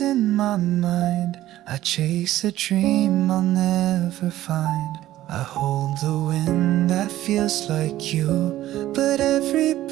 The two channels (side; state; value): left; quieter; 14.3 dB